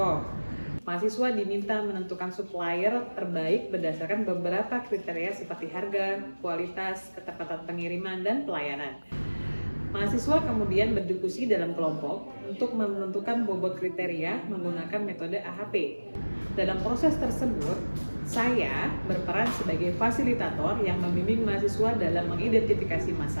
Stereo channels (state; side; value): inverted; both; correlation -1.00